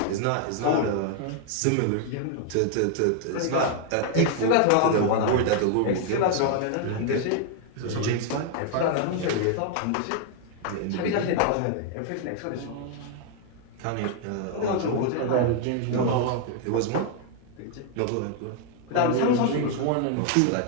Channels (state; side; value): different; both; correlation 0.00